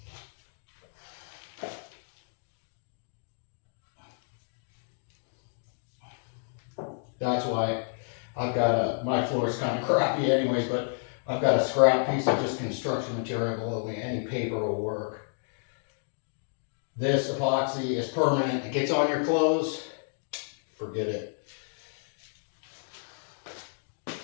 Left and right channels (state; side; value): silent; right; digital silence